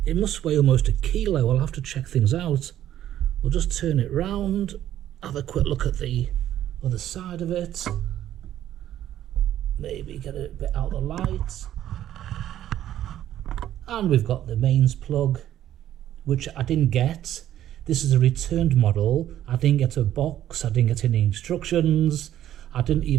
It must weigh almost a kilo. I'll have to check things out. We'll just turn it round, have a quick look at the other side of it. Maybe get it a bit out of the light. And we've got the mains plug, which I didn't get. This is a returned model. I didn't get a box, I didn't get any instructions, I didn't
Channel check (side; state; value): left; quieter; 12.0 dB